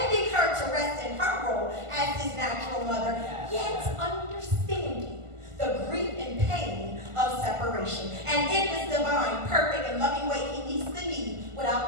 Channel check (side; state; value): left; late; 1.5 ms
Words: her to rest in her role as his natural mother, yet understanding the grief and pain of separation. And in his divine, perfect, and loving way, he meets the need